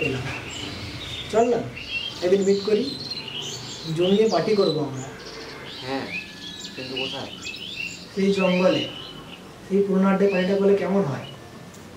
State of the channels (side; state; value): both; identical; correlation 1.00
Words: পেলাম। চল না একদিন মিট করি, জমিয়ে পার্টি করবো আমরা। হ্যাঁ, কিন্তু কোথায়? সেই জঙ্গলে, সেই পুরোনো আড্ডে পার্টিটা করলে কেমন হয়?